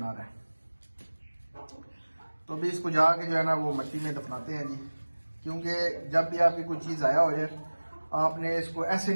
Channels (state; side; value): inverted; both; correlation -1.00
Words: है। तो अभी इसको जाके जो है ना वो मिट्टी में दफनाते हैं जी। क्योंकि जब भी आपकी कोई चीज़ ज़ाया हो जाए, आपने इसको ऐसे